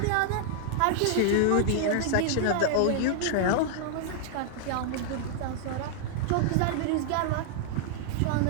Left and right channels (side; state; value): both; different; correlation 0.00